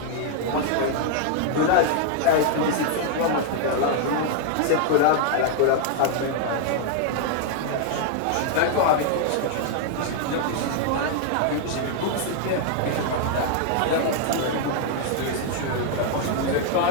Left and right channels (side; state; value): both; different; correlation 0.00